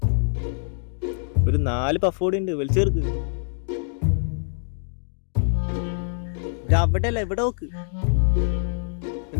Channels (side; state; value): right; silent; digital silence